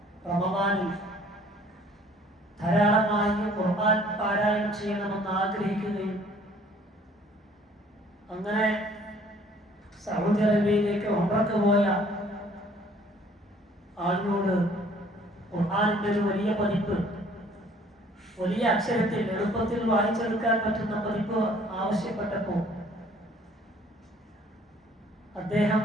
റമദാനിൽ ധാരാളമായി ഖുർആൻ പാരായണം ചെയ്യണമെന്ന് ആഗ്രഹിക്കുകയും അങ്ങനെ സൗദി അറേബ്യയിലേക്ക് ഉംറക്ക് പോയ ആളിനോട് ഖുർആനിന്റെ ഒരു വലിയ പതിപ്പ്, വലിയ അക്ഷരത്തിൽ എളുപ്പത്തിൽ വായിച്ചെടുക്കാൻ പറ്റുന്ന പതിപ്പ് ആവശ്യപ്പെട്ടപ്പോൾ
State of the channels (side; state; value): both; normal; correlation 0.56